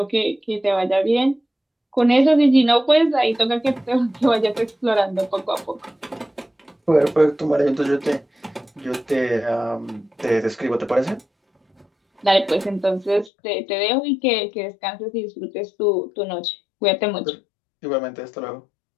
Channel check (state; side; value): drops out; right; at 13.3 s